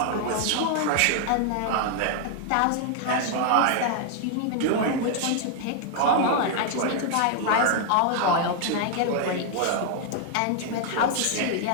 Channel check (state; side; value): different; both; correlation 0.00